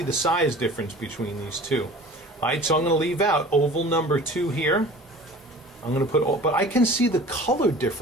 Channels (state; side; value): normal; both; correlation 0.42